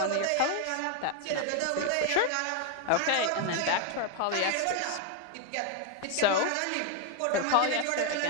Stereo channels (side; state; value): both; different; correlation 0.01